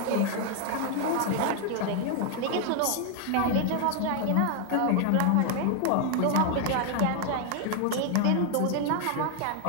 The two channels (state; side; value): different; both; correlation 0.00